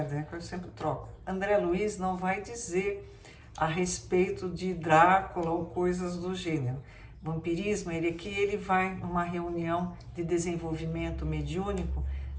eu sempre troco. André Luiz não vai dizer a respeito de Drácula ou coisas do gênero. Vampirismo, ele vai numa reunião de desenvolvimento mediúnico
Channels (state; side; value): identical; both; correlation 1.00